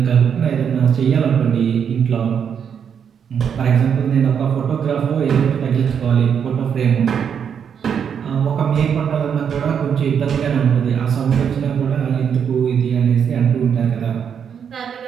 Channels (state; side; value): quieter; left; 7.6 dB